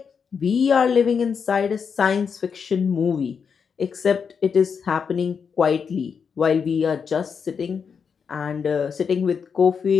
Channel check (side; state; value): right; quieter; 6.3 dB